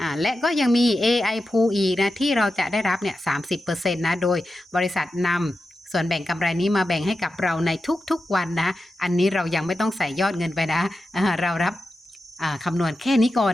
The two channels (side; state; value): both; normal; correlation 0.91